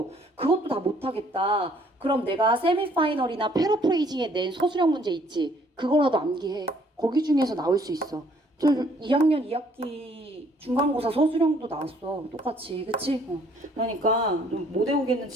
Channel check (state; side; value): normal; both; correlation 0.62